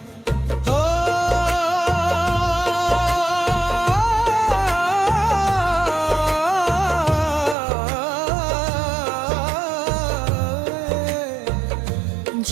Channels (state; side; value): drops out; left; at 7.6 s